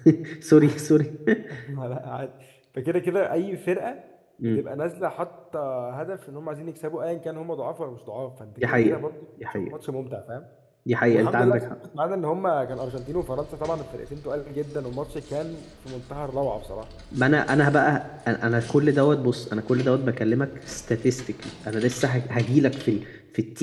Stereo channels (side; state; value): both; identical; correlation 1.00